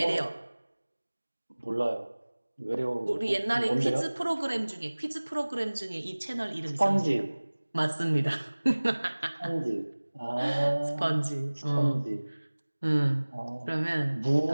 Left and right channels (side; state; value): both; inverted; correlation -1.00